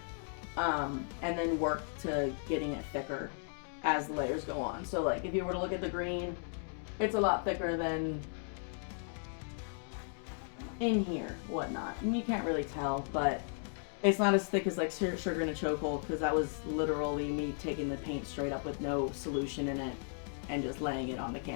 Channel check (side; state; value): right; silent; 54 dB below the other